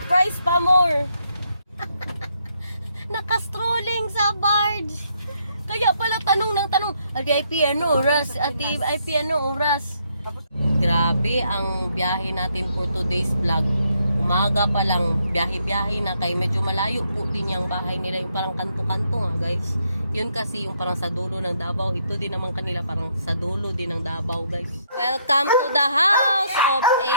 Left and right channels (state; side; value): inverted; both; correlation -0.73